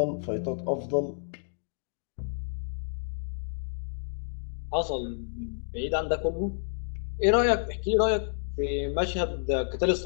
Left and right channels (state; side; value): silent; right; digital silence